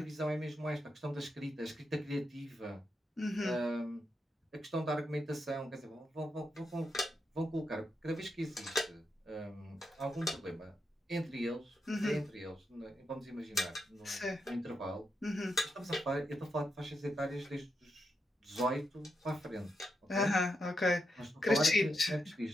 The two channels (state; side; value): normal; both; correlation 0.84